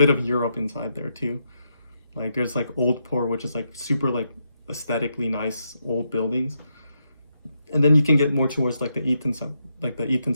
of Europe inside there too. Like there's like Old Port, which is like super like aesthetically nice old buildings. And then you can get more towards like the Eaton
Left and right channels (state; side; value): inverted; both; correlation -0.82